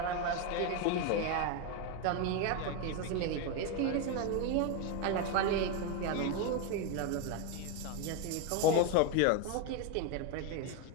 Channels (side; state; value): both; different; correlation 0.02